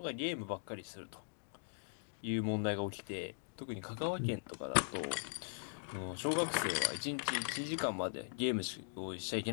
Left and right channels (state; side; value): silent; right; digital silence